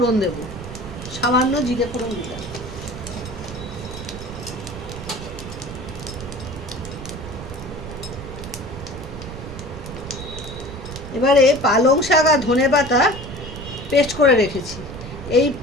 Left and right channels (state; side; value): noise; right; rumble, 11 dB below the sound